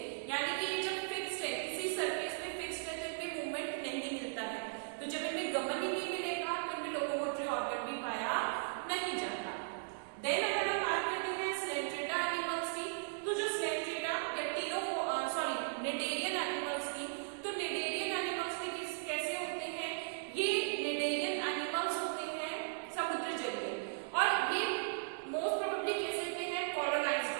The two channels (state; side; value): silent; left; digital silence